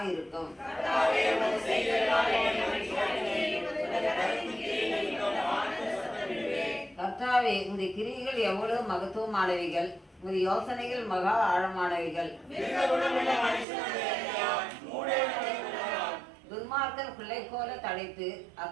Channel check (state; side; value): drops out; left; at 13.7 s